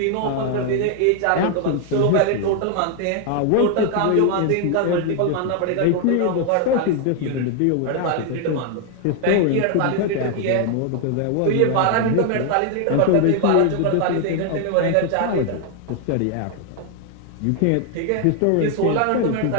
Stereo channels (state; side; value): different; both; correlation 0.00